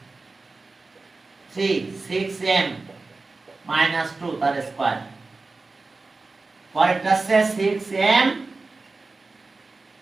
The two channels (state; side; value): quieter; left; 3.7 dB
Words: 3 6m minus 2 তার স্কয়ার। পরেরটা আছে 6m